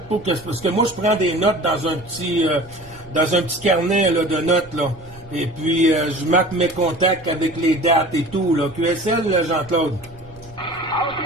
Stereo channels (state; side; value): noise; right; rumble, 22 dB below the sound